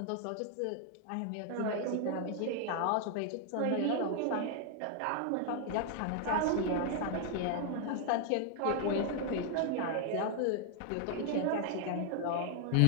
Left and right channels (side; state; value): both; different; correlation 0.00